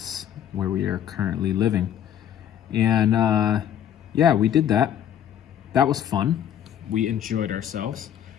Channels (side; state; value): right; quieter; 10.0 dB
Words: where we are currently living. And yeah, we did that. That was fun. We enjoyed ourselves.